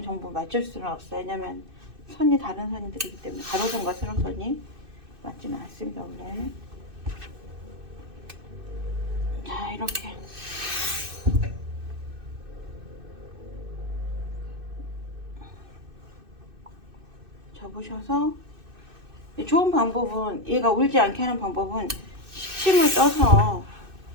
전부 맞출 수는 없어요. 왜냐면 선이 다른 선들이기 때문에 가로선과 세로선이 맞지는 않습니다. 원래. 자, 이렇게 접으셔서 좋은 방법은, 얘가 울지 않게 하는 방법은 식침을 떠서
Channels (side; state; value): left; late; 2.6 ms